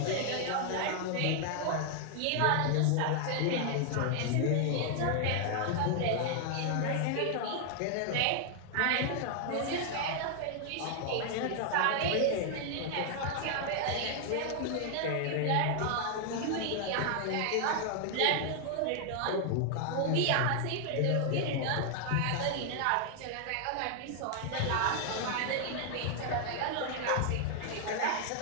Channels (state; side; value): different; both; correlation 0.00